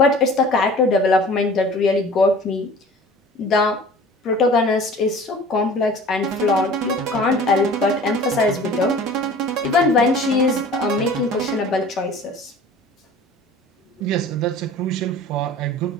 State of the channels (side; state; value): both; normal; correlation 0.44